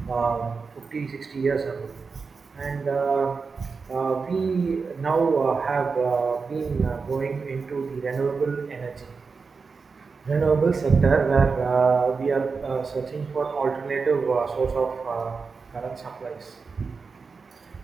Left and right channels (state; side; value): quieter; left; 4.8 dB